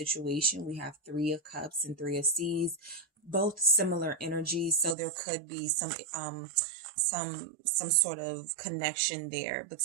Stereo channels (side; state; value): left; drops out; at 5.0 s